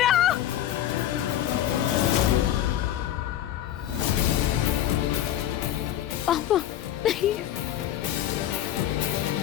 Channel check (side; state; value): right; quieter; 12.1 dB